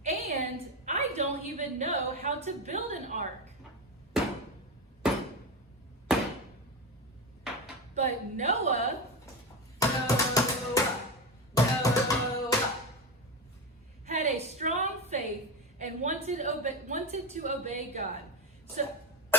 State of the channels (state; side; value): normal; both; correlation 0.18